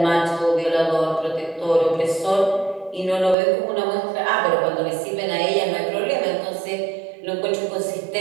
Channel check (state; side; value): drops out; left; at 3.4 s